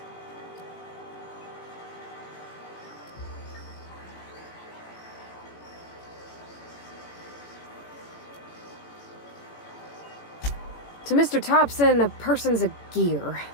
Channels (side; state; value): right; late; 18 ms